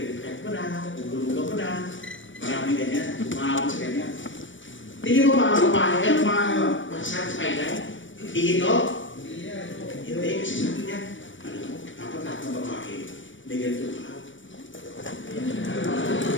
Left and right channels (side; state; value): right; late; 0.56 ms